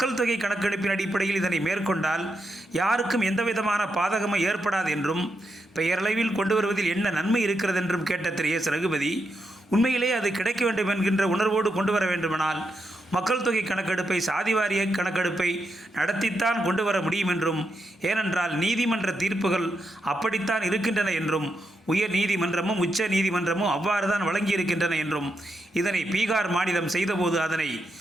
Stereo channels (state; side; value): normal; both; correlation 0.84